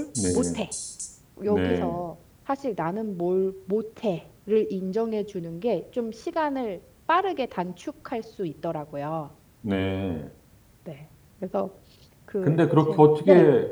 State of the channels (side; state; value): both; identical; correlation 1.00